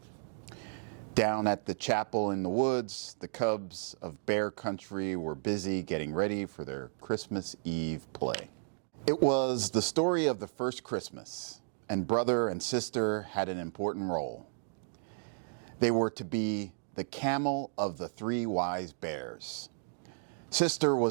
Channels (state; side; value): silent; left; digital silence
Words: Down at the chapel in the woods, the cubs of Bear Country were busy getting ready for their Christmas Eve play. It was the story of the first Christmas, and brother and sister had an important role. They were to be the camel of the three wise bears. Sister